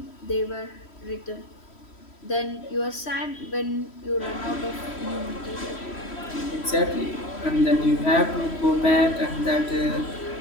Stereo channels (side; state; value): right; late; 3.1 ms